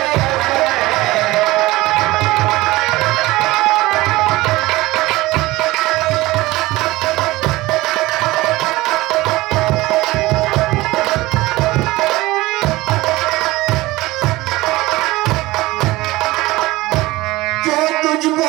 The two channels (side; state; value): left; quieter; 19.4 dB